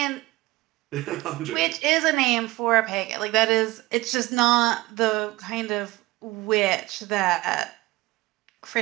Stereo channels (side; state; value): left; quieter; 19.5 dB